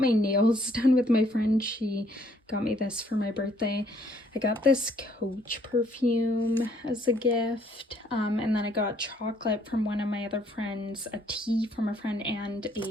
nails done with my friend. She got me this for my birthday. I got this Coach perfume as a gift, and then I got chocolate from one of my other friends, a tea from a friend, and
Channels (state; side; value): normal; both; correlation 0.65